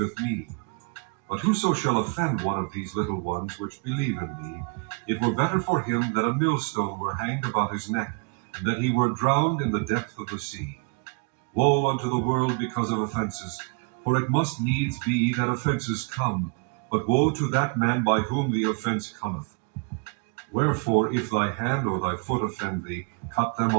me. But whoso shall offend one of these little ones which believe in me, it were better for him that a millstone were hanged about his neck, and that he were drowned in the depth of the sea. Woe unto the world because of offenses, for it must needs be that offenses come, but woe to that man by whom the offense cometh. Wherefore, if thy hand or thy foot offend thee, cut them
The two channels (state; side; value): quieter; left; 35.4 dB